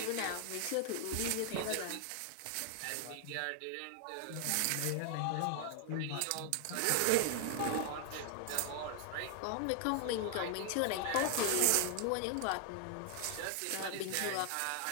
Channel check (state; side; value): different; both; correlation 0.00